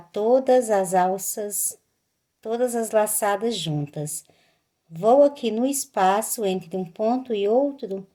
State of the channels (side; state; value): both; identical; correlation 1.00